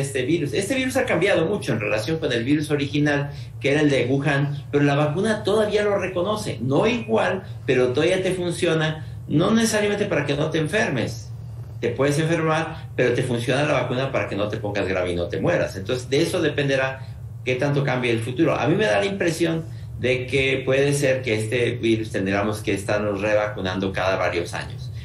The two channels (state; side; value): identical; both; correlation 1.00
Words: virus. Este virus ha cambiado mucho en relación con el virus original, que era el de Wuhan, pero la vacuna todavía lo reconoce. No igual, pero todavía te funciona. No necesariamente para que no te enfermes, te puedes enfermar, pero te funciona la vacuna para que no te pongas grave y no te mueras. Entonces, de eso dependerá qué tanto cambie el futuro. A mí me da la impresión de que puede ser que este virus tendremos que estarnos revacunando cada varios años,